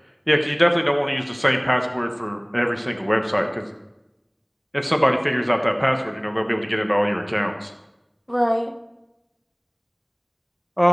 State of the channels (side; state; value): both; identical; correlation 1.00